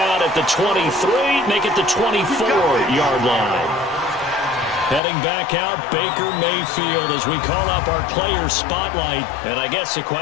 at the 23, make it the 24-yard line. Heading back out, Baker Mayfield as we call up our player spotlight. And I guess the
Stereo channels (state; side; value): drops out; right; at 5.0 s